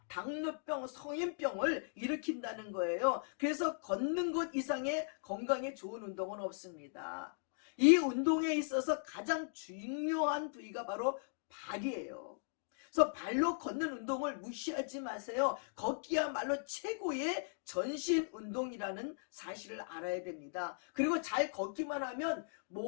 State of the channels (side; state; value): right; silent; digital silence